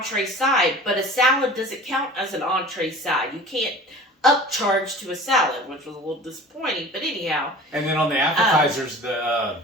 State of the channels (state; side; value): normal; both; correlation 0.41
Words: side. But a salad doesn't count as an entree side. You can't upcharge to a salad, which was a little disappointing. But anyhow. And then on the appetizers,